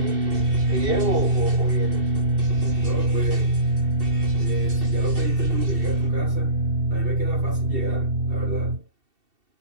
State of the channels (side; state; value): left; late; 2.7 ms